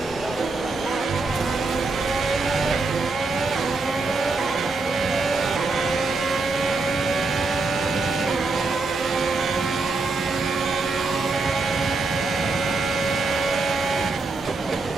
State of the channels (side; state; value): left; quieter; 3.7 dB